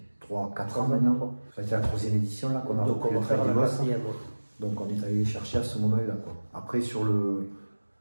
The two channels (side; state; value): both; inverted; correlation -1.00